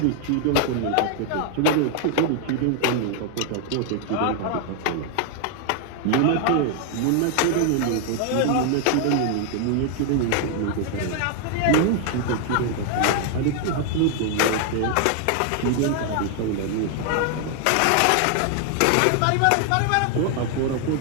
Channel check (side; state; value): both; different; correlation 0.00